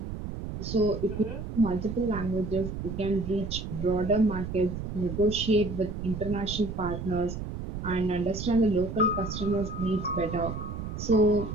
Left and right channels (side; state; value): right; noise; rumble, 6 dB below the sound